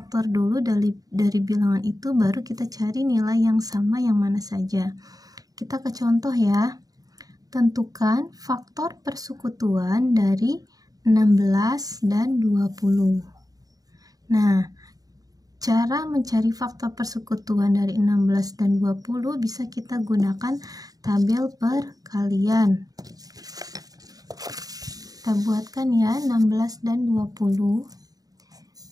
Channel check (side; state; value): left; late; 0.18 ms